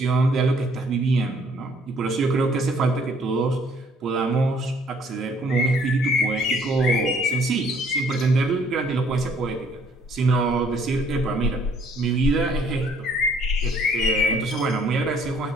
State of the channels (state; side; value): normal; both; correlation 0.61